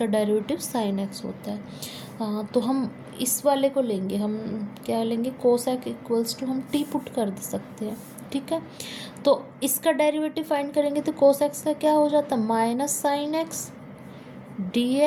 डेरिवेटिव साइन एक्स होता है। तो हम इस वाले को लेंगे, हम क्या लेंगे, कोस एक्स इक्वल्स टू हम टी पुट कर सकते हैं, ठीक है। तो इसका डेरिवेटिव फाइंड करेंगे, तो कोस एक्स का क्या हो जाता है, minus sine x d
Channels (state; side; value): identical; both; correlation 1.00